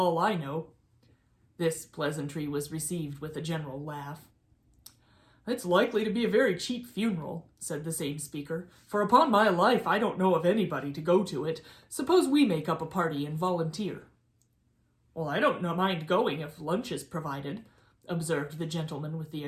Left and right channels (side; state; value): both; identical; correlation 1.00